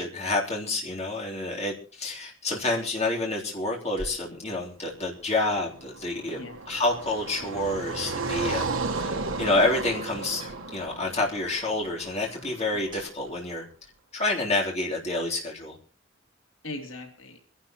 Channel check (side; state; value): both; normal; correlation 0.17